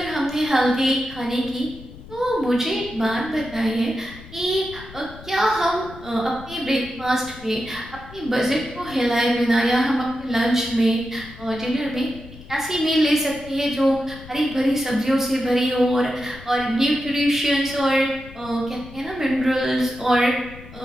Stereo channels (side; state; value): left; noise; rumble, 17 dB below the sound